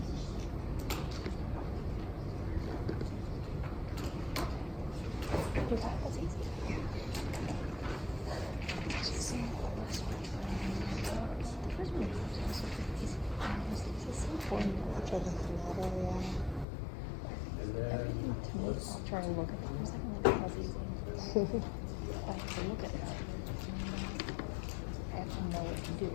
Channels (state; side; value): drops out; right; at 16.7 s